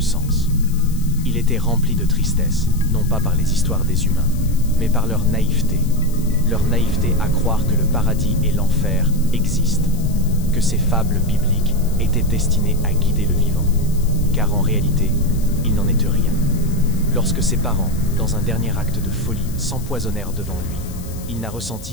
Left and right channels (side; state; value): left; noise; hiss, 18 dB below the sound